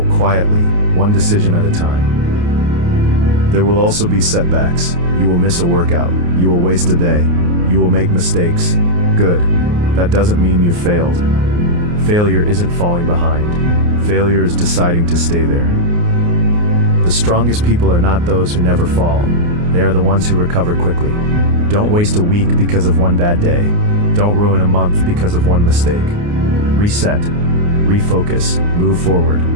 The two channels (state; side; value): late; left; 29 ms